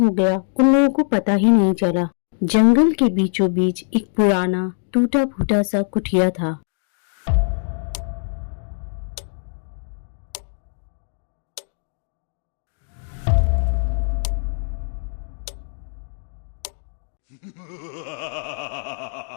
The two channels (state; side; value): silent; right; digital silence